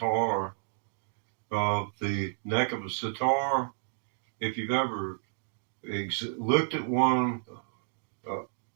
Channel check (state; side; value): silent; left; digital silence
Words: The neck of a sitar, if you've ever looked at one